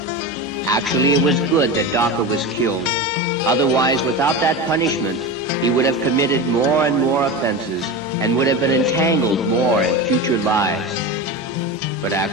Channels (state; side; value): normal; both; correlation 0.24